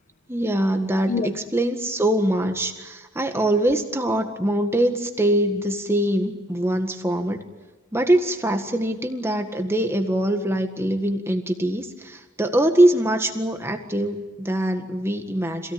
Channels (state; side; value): normal; both; correlation 0.72